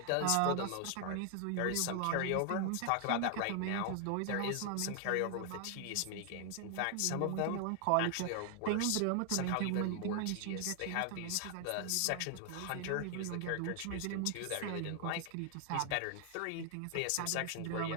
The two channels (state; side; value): different; both; correlation 0.00